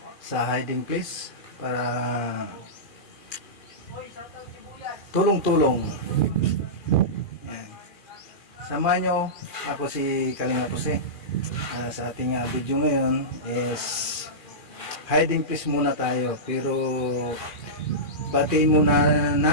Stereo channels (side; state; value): right; late; 2.4 ms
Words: sa hiding place para tulong-tulong. Yan. Samahan nyo, ako si Kalinga Jose. Sa ating video ngayon is hiding place muna tayo, pero batiin muna